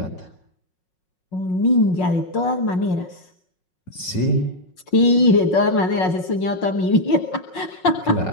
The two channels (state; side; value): late; right; 5.5 ms